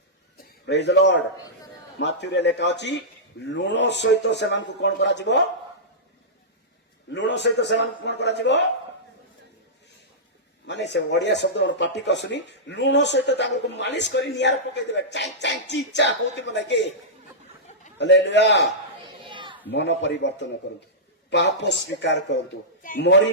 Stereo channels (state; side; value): normal; both; correlation -0.15